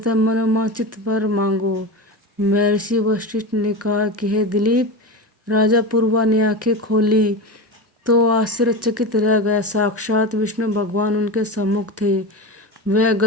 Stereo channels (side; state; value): both; normal; correlation 0.23